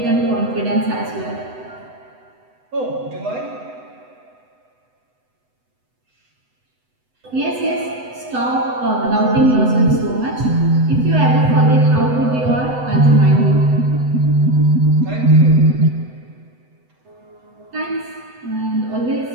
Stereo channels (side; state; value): left; late; 8.0 ms